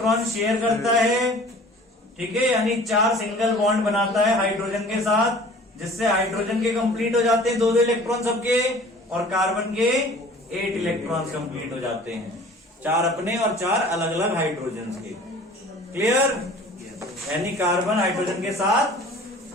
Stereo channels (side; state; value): both; normal; correlation 0.47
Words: शेयर करता है, ठीक है, यानी 4 सिंगल बॉन्ड बनाता है हाइड्रोजन के साथ, जिससे हाइड्रोजन के कंप्लीट हो जाते हैं 2 इलेक्ट्रॉन सबके, और कार्बन के 8 इलेक्ट्रॉन कंप्लीट हो जाते हैं, 4 अपने और 4 अलग अलग हाइड्रोजन के। क्लियर? यानी कार्बन हाइड्रोजन के साथ